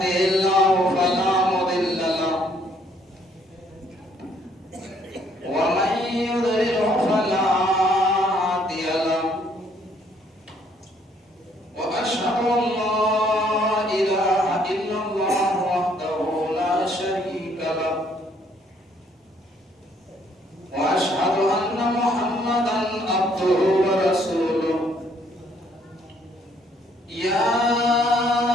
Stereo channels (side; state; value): both; normal; correlation 0.66